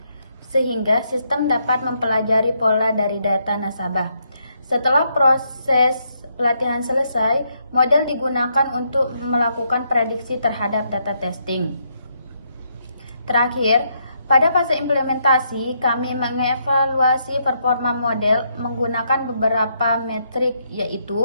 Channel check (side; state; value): both; inverted; correlation -0.76